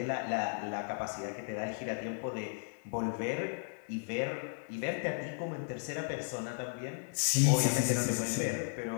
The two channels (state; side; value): silent; right; digital silence